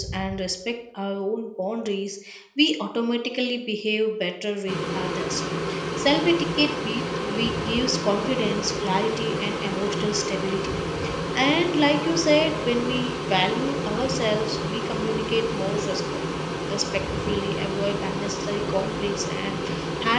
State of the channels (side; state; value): both; identical; correlation 1.00